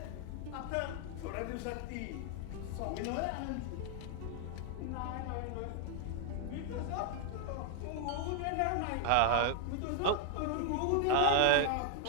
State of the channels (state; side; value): different; both; correlation 0.00